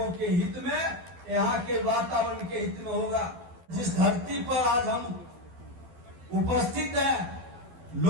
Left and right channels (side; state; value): left; late; 12 ms